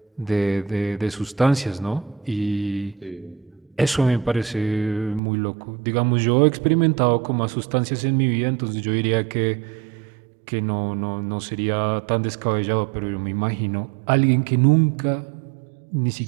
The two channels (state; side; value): drops out; left; at 5.2 s